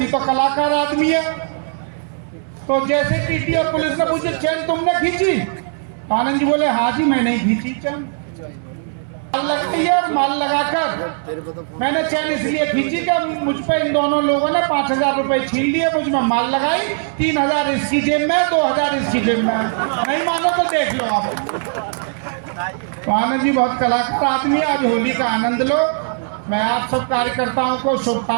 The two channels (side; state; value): left; silent; digital silence